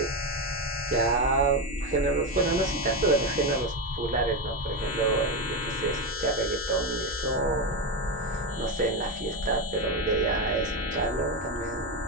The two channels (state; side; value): normal; both; correlation 0.12